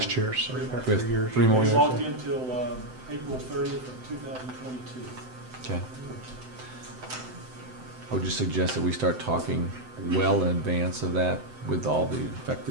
year, so we've got We have 3 years. 3 more years. It's locked in until April 30th of 2022. Okay. I would just suggest that we start talking well in advance of that with all the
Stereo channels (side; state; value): left; late; 7.8 ms